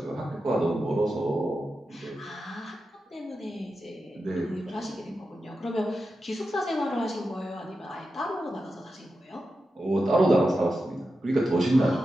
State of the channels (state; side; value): normal; both; correlation 0.90